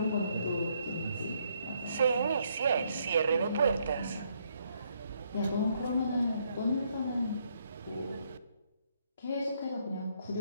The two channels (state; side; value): inverted; both; correlation -0.73